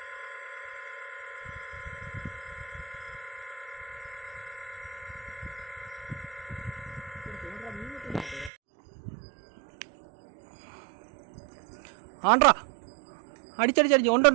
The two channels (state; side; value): drops out; left; at 8.5 s